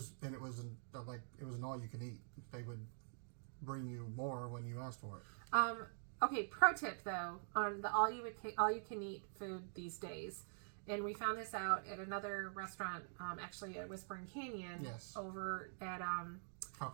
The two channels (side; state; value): left; silent; digital silence